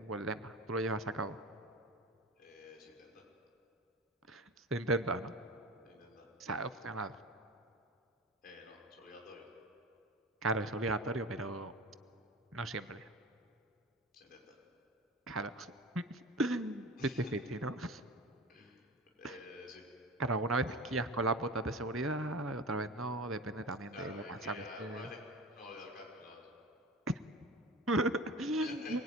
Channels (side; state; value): both; normal; correlation 0.33